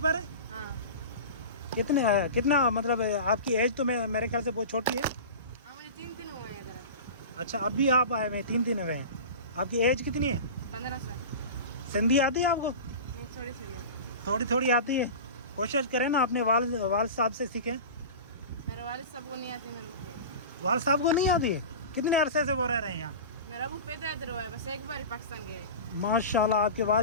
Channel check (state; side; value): inverted; both; correlation -0.31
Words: है? हाँ कितना मतलब आपकी एज तो मेरे ख्याल से बहुत छोटी है। हाँ, मुझे 3 दिन हुए हैं इधर। अच्छा, अभी आप आए हुए हैं, 3 दिन हुए हैं। आपकी एज कितनी है? 15 साल। सिंधी आती है आपको? वो थोड़ी थोड़ी है। थोड़ी थोड़ी आती है। कोशिश करें ना अपने वालिद साहब से सीखें। मेरे वालिद साहब को नहीं आती मेरे को। वालिद साहब को नहीं आती है? कितने अरसे से वो रह रहे हैं यहाँ? मेरा अबू पैदा इधर हुआ है, बस एक बार ही पाकिस्तान गए हैं। माशाल्लाह। आपके